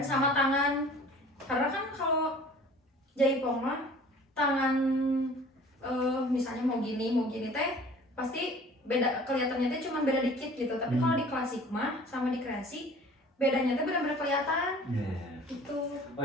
tangan. Karena kan kalau jaipong mah tangan misalnya mau gini teh pasti beda, kelihatannya teh cuma beda dikit gitu. Tapi kalau di klasik mah sama di kreasi bedanya teh benar-benar kelihatan gitu. Oh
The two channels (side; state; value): both; normal; correlation 0.47